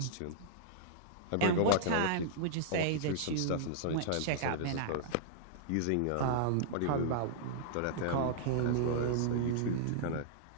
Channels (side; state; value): both; different; correlation -0.01